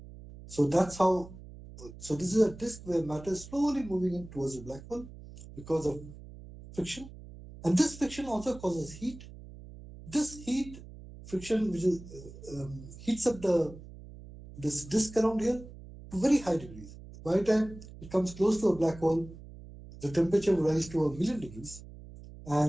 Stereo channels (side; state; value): right; noise; hum, 16 dB below the sound